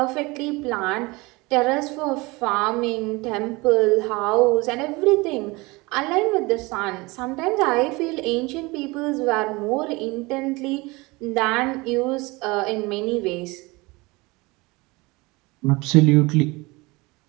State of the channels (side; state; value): left; quieter; 23.8 dB